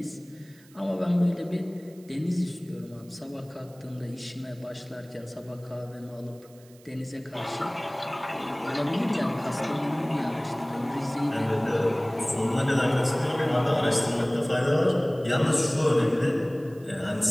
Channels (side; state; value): right; noise; hiss, 27 dB below the sound